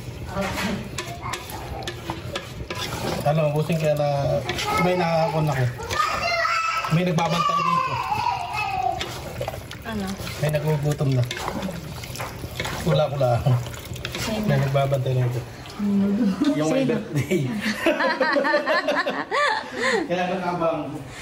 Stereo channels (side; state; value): both; identical; correlation 1.00